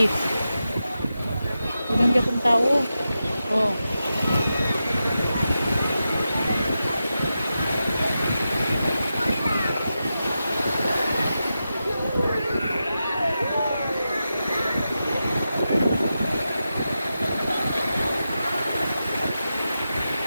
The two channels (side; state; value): both; inverted; correlation -0.90